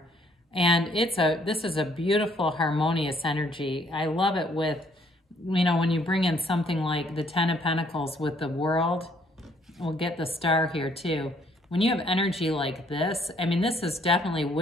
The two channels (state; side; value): normal; both; correlation 0.65